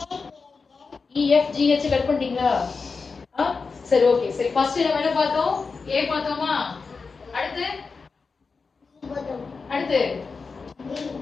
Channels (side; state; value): right; quieter; 4.7 dB